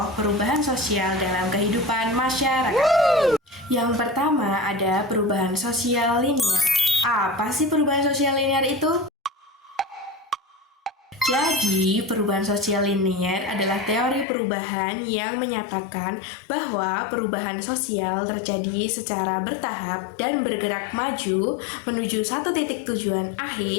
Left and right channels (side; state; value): right; drops out; at 14.2 s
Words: perubahan sosial dalam kehidupan masyarakat. Yang pertama ada perubahan sosial linear. Apa sih perubahan sosial linear itu? Jadi, perubahan sosial linear adalah teori perubahan yang menyatakan bahwa perubahan sosial terjadi secara bertahap dan bergerak maju menuju satu titik tujuan